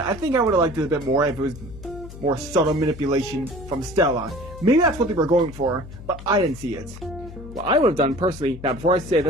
I think I would have liked it a bit more if it was more subtle manipulation from Stella. Maybe that's what they were going for, but I didn't see it. What I would have done personally, now before I say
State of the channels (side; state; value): left; noise; hum, 14 dB below the sound